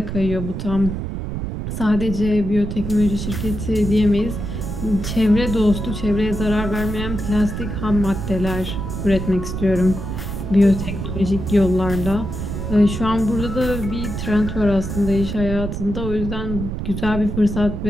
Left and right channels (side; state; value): right; noise; rumble, 5 dB below the sound